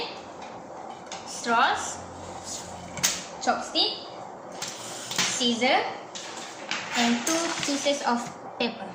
straws, chopstick, scissor, and 2 pieces of paper.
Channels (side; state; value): both; identical; correlation 1.00